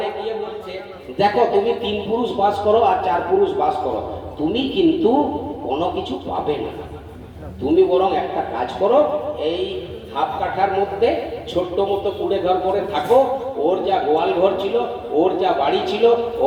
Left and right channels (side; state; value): both; identical; correlation 1.00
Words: গিয়ে বলছে, দেখো তুমি 3 পুরুষ বাস করো আর 4 পুরুষ বাস করো, তুমি কিন্তু কোনো কিছু পাবে না। তুমি বরং একটা কাজ করো, এই হাফ কাঠার মধ্যে ছোট্ট মতো কুড়ে ঘর করে থাকো। ওর যা গোয়াল ঘর ছিল, ওর যা বাড়ি ছিল,